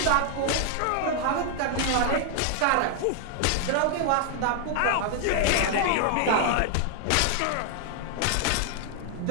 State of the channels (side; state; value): both; different; correlation 0.00